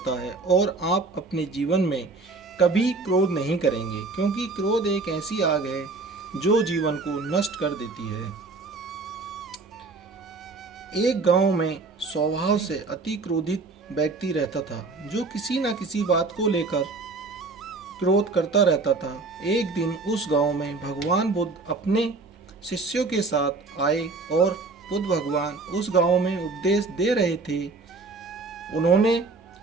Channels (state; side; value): quieter; left; 3.8 dB